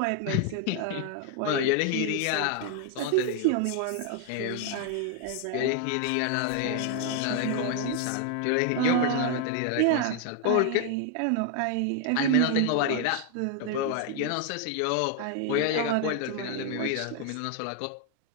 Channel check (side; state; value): both; different; correlation 0.00